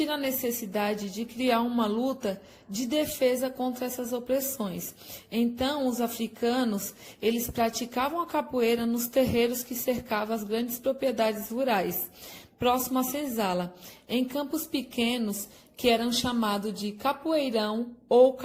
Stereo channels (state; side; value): identical; both; correlation 1.00